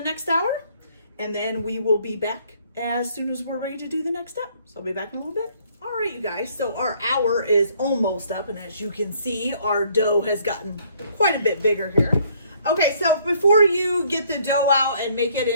next hour, and then we will be back as soon as we're ready to do the next step. So I'll be back in a little bit. All right, you guys, so our hour is almost up, and as you can see, our dough has gotten quite a bit bigger here. Okay, so before you get the dough out and make it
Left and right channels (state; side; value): inverted; both; correlation -0.63